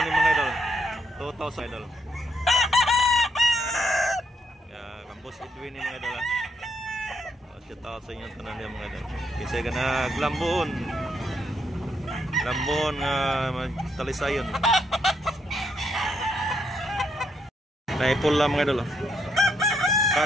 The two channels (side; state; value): both; normal; correlation 0.76